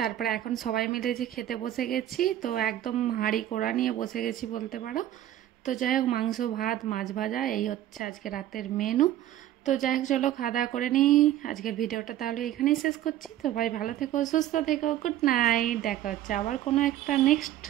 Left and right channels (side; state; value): left; quieter; 12.7 dB